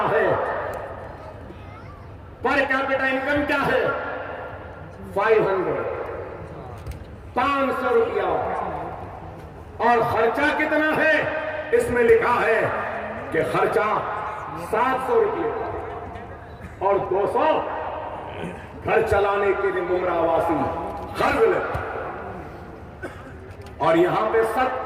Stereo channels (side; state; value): both; identical; correlation 1.00